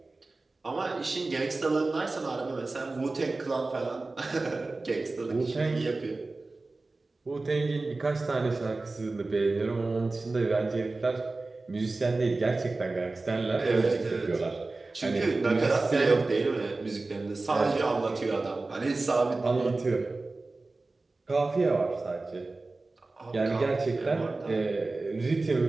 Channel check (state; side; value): quieter; left; 3.4 dB